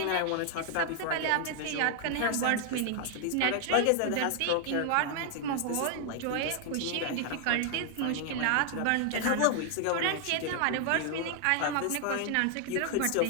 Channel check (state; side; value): different; both; correlation 0.00